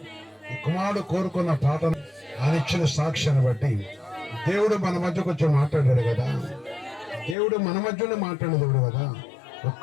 కుమారుడు కోరుకున్న పాటను ఆయన ఇచ్చిన సాక్ష్యాన్ని బట్టి దేవుడు మన మధ్య కొంచెం మాట్లాడాడు కదా. దేవుడు మన మధ్యలో మాట్లాడే దేవుడు కదా.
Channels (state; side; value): drops out; right; at 7.4 s